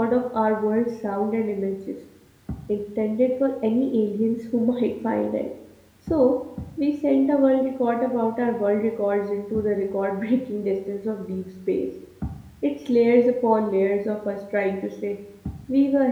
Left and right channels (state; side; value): identical; both; correlation 1.00